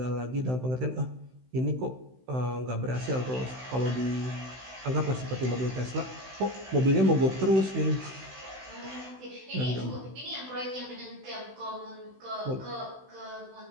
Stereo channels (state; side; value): late; left; 16 ms